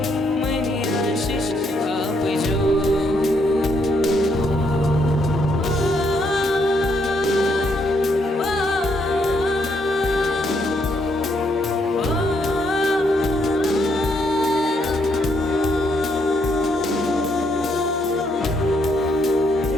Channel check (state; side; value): normal; both; correlation 0.74